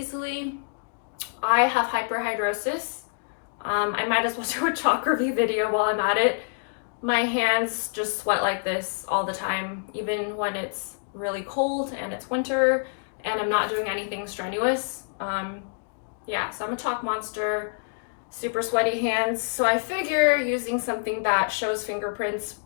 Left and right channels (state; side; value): silent; right; digital silence